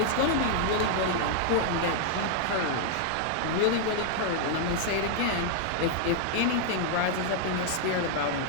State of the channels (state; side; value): different; both; correlation 0.00